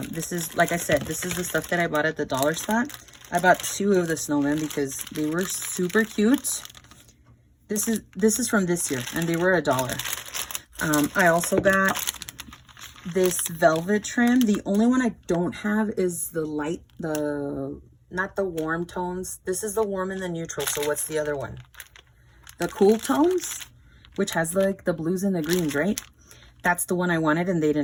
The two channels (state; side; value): identical; both; correlation 1.00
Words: This is, like I said, this is the stuff that I bought at the dollar spot. I bought 2 of the snowmen because they were super cute. This is from this year, and they were $1. I also got this velvet trim. The only one I don't have is the light, not the warm tones. This is the warm and the neutral. So what's the other one? The cool tones, which has like the blues and the greens, right? That's the one I wanted, and they